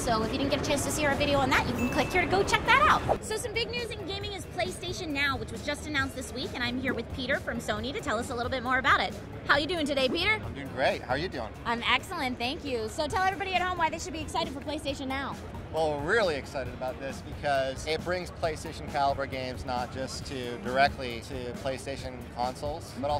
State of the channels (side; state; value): both; identical; correlation 1.00